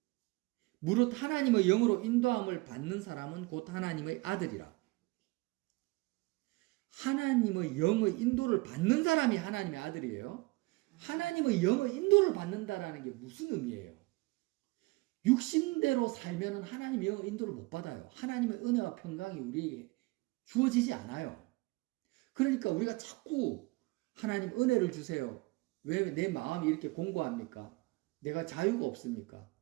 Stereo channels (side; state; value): left; quieter; 23.8 dB